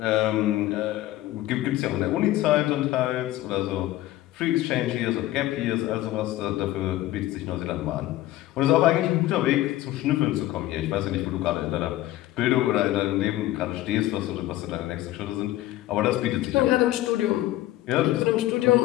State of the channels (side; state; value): right; quieter; 15.5 dB